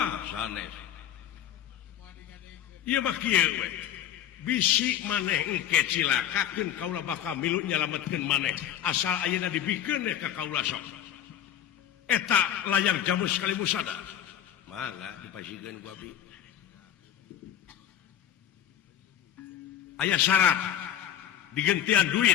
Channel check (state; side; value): quieter; right; 10.7 dB